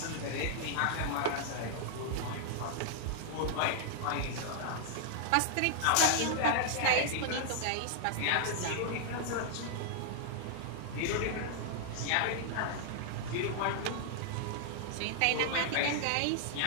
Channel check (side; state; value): both; different; correlation -0.01